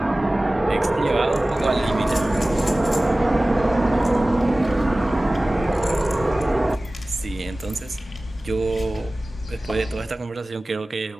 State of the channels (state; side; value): normal; both; correlation 0.98